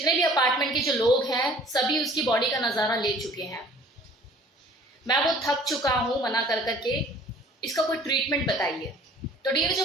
भी अपार्टमेंट के जो लोग हैं सभी उसकी बॉडी का नजारा ले चुके हैं। मैं वो थक चुका हूं मना कर करके, इसका कोई ट्रीटमेंट बताइए। तो डियर,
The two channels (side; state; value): both; normal; correlation 0.51